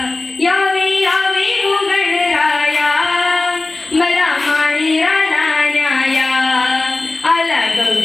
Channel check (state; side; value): quieter; right; 3.2 dB